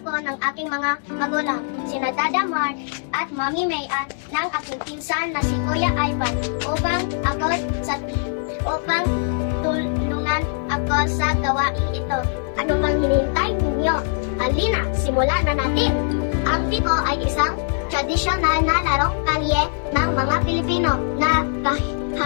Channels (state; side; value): silent; right; 64 dB below the other